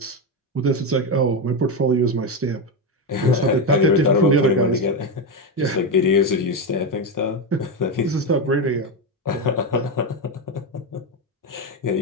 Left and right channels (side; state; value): both; normal; correlation 0.11